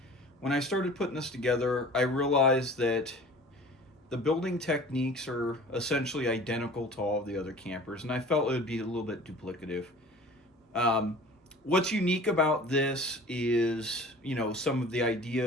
when I started putting this together, I realized that the building techniques are essentially identical to all of the other campers, and I felt it would be a little bit duplicative. Um, what's unique about this is, some of the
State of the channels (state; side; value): normal; both; correlation 0.44